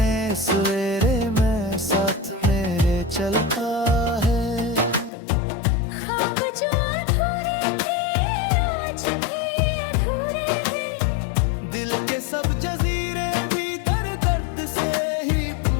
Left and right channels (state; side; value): drops out; right; at 5.1 s